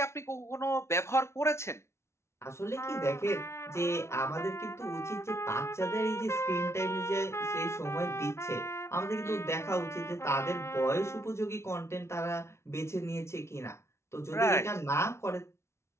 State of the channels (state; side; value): late; right; 0.13 ms